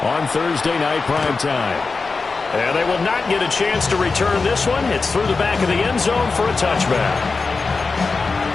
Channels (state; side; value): quieter; right; 4.2 dB